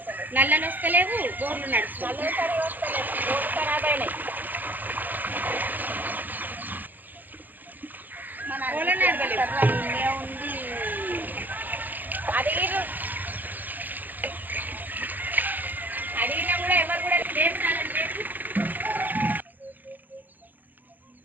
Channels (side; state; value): left; late; 0.086 ms